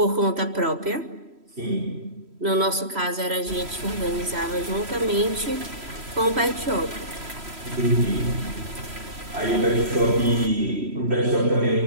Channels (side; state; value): left; late; 3.1 ms